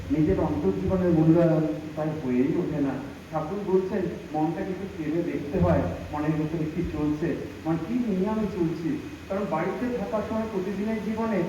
নিজের অন্তর্জীবনের মূল্যায়ন তাই হয়েই ওঠে না। ঠাকুর বলছেন মনটাকে একটু ফেলে দেখতে হয়, মনের ভিতরে কি চলছে, মানে কি নিয়ে আমি চলছি। কারণ বাড়িতে থাকার সময় প্রতিদিনের জীবনে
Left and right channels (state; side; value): identical; both; correlation 1.00